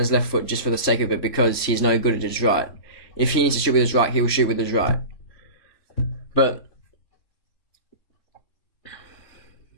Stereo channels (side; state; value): right; late; 3.5 ms